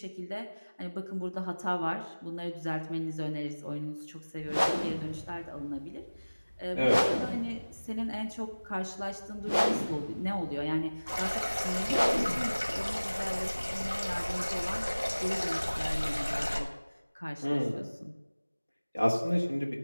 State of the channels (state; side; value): inverted; both; correlation -1.00